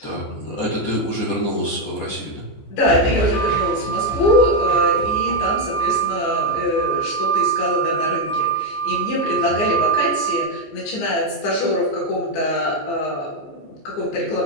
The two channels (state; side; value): late; right; 15 ms